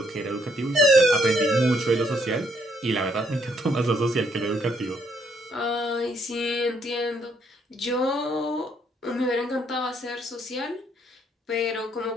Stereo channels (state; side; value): normal; both; correlation 0.70